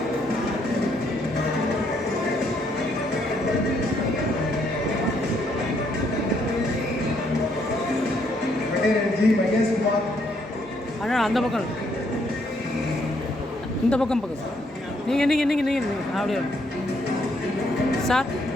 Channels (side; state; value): both; normal; correlation 0.71